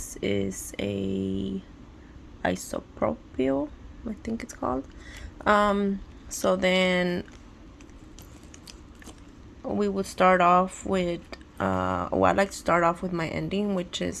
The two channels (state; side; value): identical; both; correlation 1.00